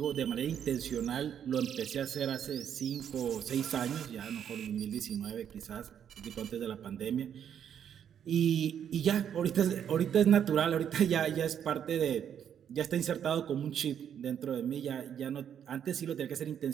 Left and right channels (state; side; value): quieter; left; 8.9 dB